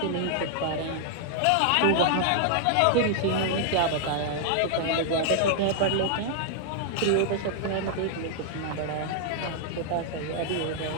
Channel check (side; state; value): both; different; correlation 0.00